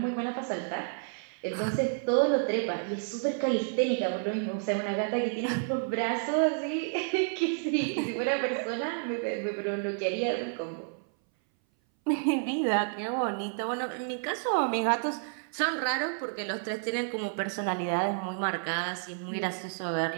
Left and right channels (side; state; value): left; silent; 58 dB below the other